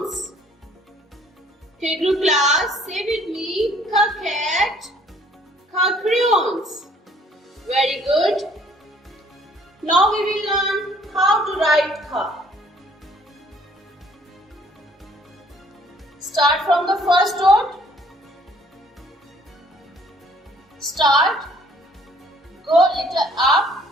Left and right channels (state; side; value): normal; both; correlation 0.59